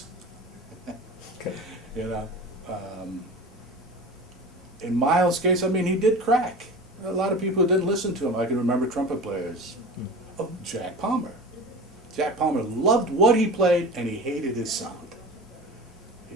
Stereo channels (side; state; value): both; normal; correlation 0.34